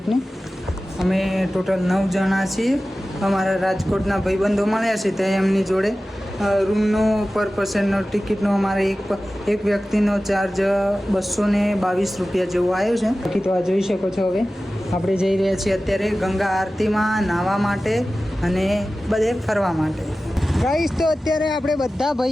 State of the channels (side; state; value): both; normal; correlation 0.96